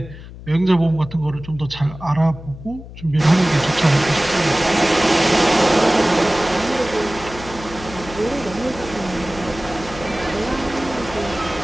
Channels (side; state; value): left; noise; hum, 15 dB below the sound